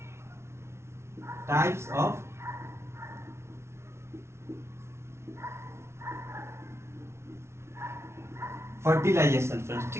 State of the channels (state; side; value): late; left; 0.13 ms